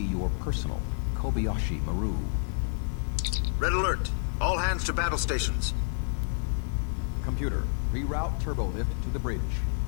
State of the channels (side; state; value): right; silent; 55 dB below the other